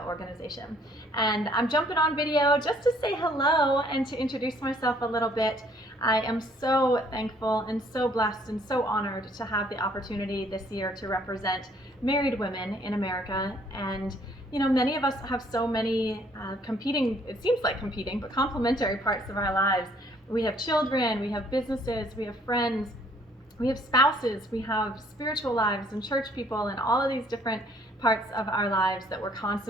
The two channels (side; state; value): both; normal; correlation 0.62